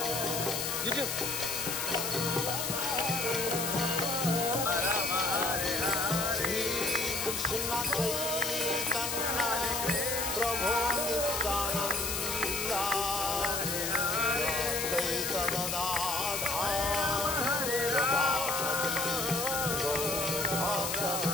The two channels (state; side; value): noise; left; hiss, 1 dB below the sound